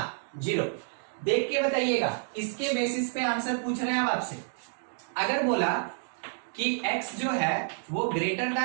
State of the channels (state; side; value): silent; left; 58 dB below the other